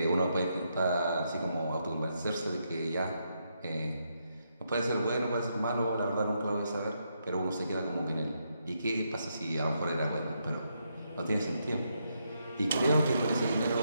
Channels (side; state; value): both; inverted; correlation -0.79